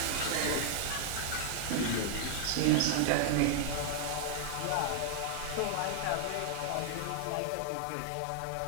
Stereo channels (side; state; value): both; different; correlation -0.01